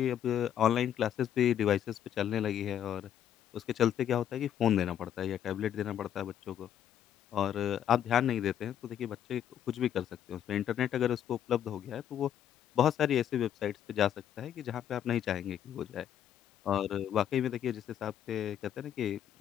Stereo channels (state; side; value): quieter; right; 10.1 dB